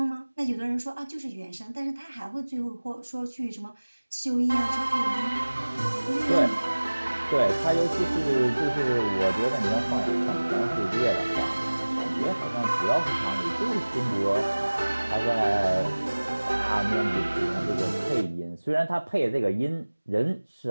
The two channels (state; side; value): inverted; both; correlation -1.00